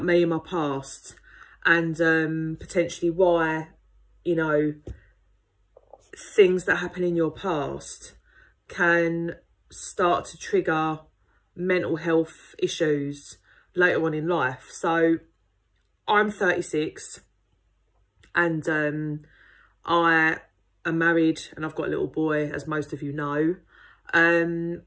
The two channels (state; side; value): identical; both; correlation 1.00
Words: me and my past and potentially why, you know, things that happen in your past can start to trigger mental health issues later on in life. So I'm 36 and I am married and I've got a little boy, as most of you know. And